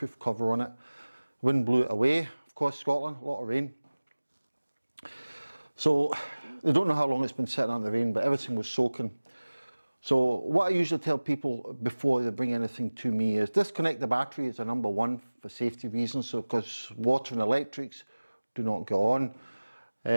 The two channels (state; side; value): inverted; both; correlation -1.00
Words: cover on it. Wind blew it away, of course Scotland, a lot of rain. So they don't know how long it's been sitting out in the rain, but everything was soaking. So what I usually tell people before they bring anything to me is disconnect the battery is a number one for safety reasons, so because water and electrics do not go on.